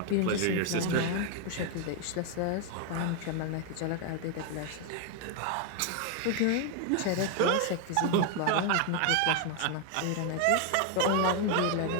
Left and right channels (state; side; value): different; both; correlation 0.01